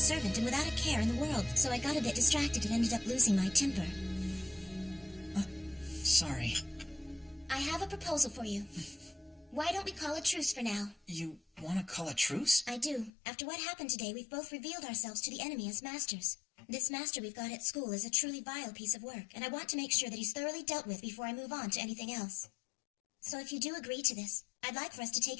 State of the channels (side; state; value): right; drops out; at 13.1 s